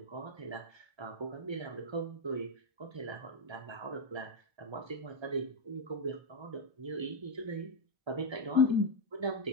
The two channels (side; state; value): left; late; 1.3 ms